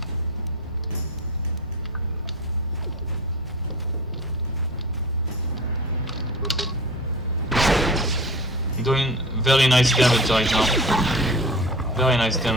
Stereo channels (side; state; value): both; normal; correlation 0.36